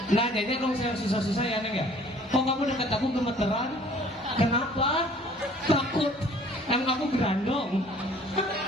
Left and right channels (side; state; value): both; normal; correlation 0.54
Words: Nanyanya dong saya susah-susah ya Neng ya. Kok kamu dekat aku gemeteran? Kenapa? Takut. Emang aku gerandong.